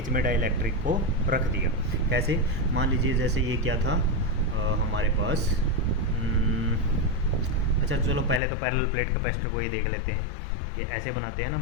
में डाइलेक्ट्रिक को रख दिया। कैसे, मान लीजिए जैसे ये क्या था हमारे पास, अच्छा चलो पहले तो पैरेलल प्लेट कैपेसिटर को ही देख लेते हैं कि ऐसे बनाते हैं ना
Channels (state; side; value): drops out; right; at 8.4 s